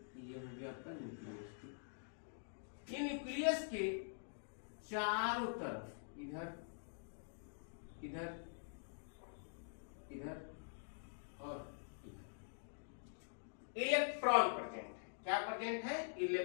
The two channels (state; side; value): silent; right; digital silence